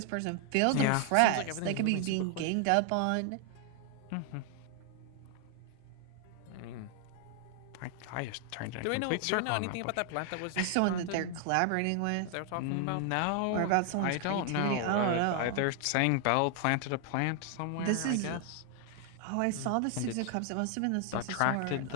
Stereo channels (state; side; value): different; both; correlation 0.00